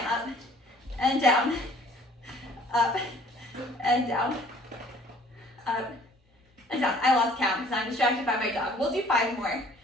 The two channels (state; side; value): normal; both; correlation 0.55